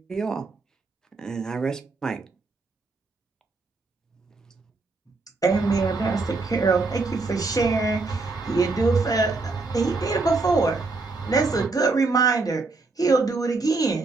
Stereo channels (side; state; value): left; quieter; 3.7 dB